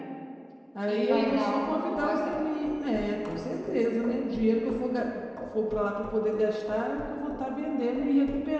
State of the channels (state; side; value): identical; both; correlation 1.00